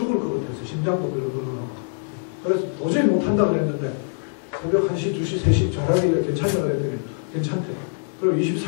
것 같아서 심장도 벌렁벌렁하고 그래서 도저히 못한다고 그랬는데 새벽 1시, 2시, 3시 잘하길래 괜찮냐고 그랬더니 괜찮대. 그리고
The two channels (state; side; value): silent; right; digital silence